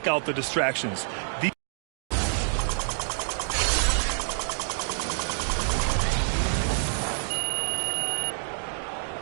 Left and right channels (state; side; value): silent; left; digital silence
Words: out the distractions.